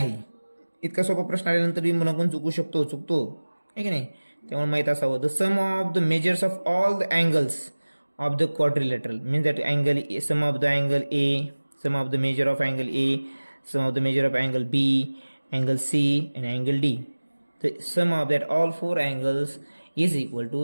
इतका सोपा प्रश्न आल्यानंतर मी मुलांकडून चुकतो आहे की नाही? त्यामुळे माहीत असावं. The sum of the measures of all the angles of the quadrilateral means that angle A, sum of the angle A, sum of the measure of angle A, sum of the measure of angle B, angle C and angle D. The sum of that all 4 angles is equal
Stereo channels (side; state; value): both; inverted; correlation -1.00